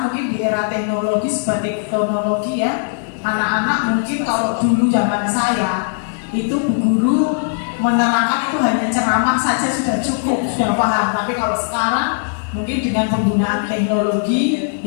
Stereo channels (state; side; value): silent; right; digital silence